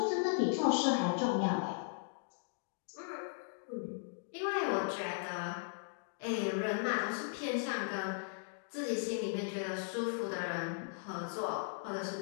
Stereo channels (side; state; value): right; silent; digital silence